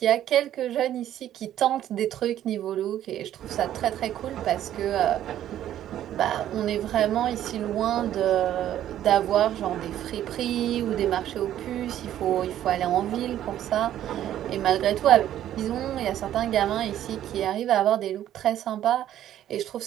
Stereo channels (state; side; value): quieter; left; 11.7 dB